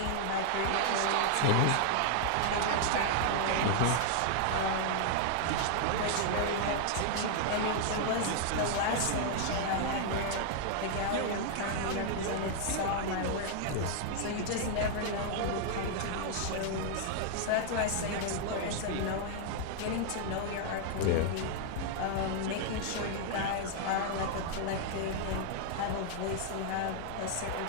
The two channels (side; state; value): both; different; correlation 0.00